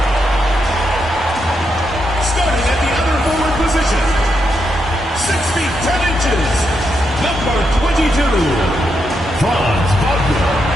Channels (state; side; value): normal; both; correlation 0.82